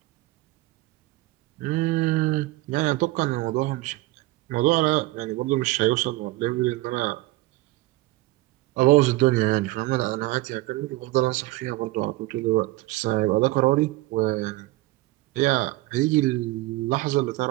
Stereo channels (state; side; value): quieter; left; 19.4 dB